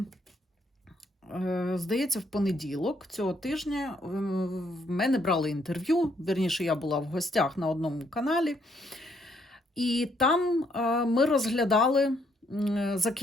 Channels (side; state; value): both; normal; correlation 0.71